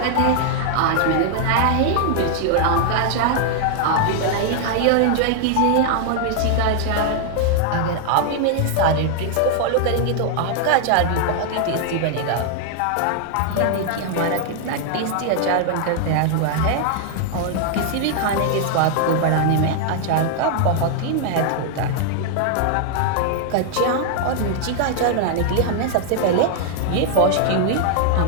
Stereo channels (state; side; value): different; both; correlation 0.00